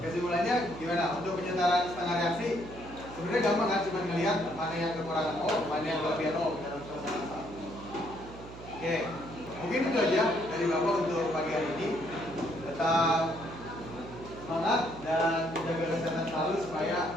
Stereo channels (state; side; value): noise; right; hum, 14 dB below the sound